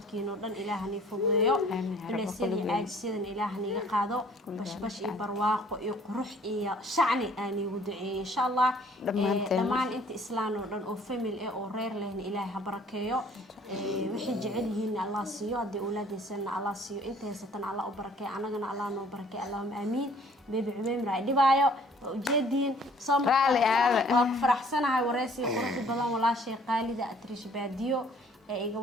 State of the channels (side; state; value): both; normal; correlation 0.56